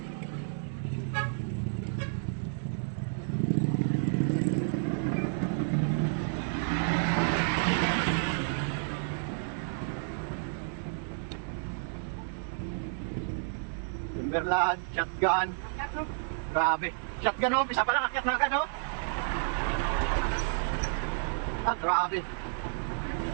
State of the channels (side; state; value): left; silent; 57 dB below the other